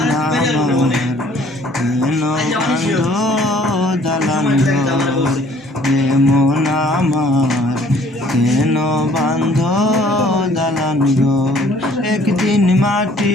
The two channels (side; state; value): both; normal; correlation 0.58